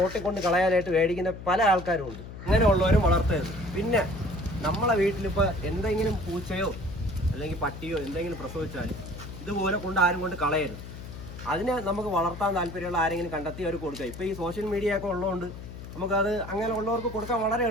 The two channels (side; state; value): left; noise; hum, 12 dB below the sound